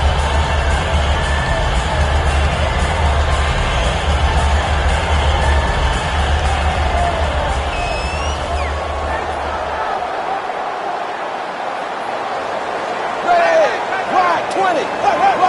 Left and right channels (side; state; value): both; identical; correlation 1.00